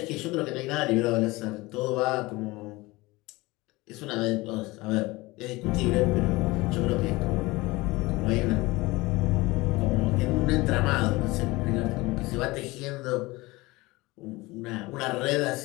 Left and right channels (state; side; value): quieter; right; 21.7 dB